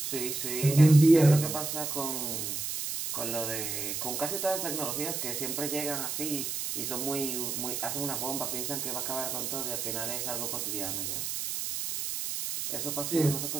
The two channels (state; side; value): noise; right; hiss, 3 dB below the sound